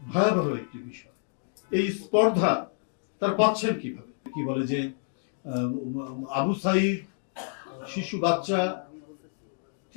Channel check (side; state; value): right; silent; digital silence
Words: ভয়াবহ একটি বিষয়। এই স্পর্ধা তার পাচ্ছেন কিভাবে? কি বলে যে আবু সাইদ, শিশু বাচ্চা